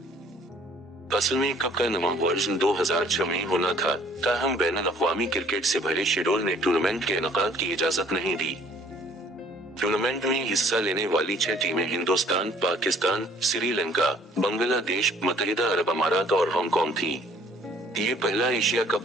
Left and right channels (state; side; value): normal; both; correlation 0.58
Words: असल में कप का नवा वर्जन 2006 में होना था, ताहम बैनुल-अक़वामी क्रिकेट से भरे शेड्यूल ने टूर्नामेंट के इनेकाद की इजाजत नहीं दी। टूर्नामेंट में हिस्सा लेने वाली 6 टीमें हिंदुस्तान, पाकिस्तान, श्रीलंका, बांग्लादेश, मुत्तहिदा अरब अमारात और हांगकांग थी। ये पहला एशिया